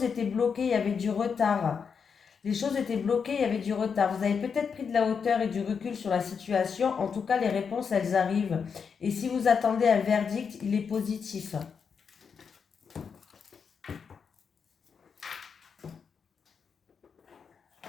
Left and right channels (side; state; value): right; quieter; 6.2 dB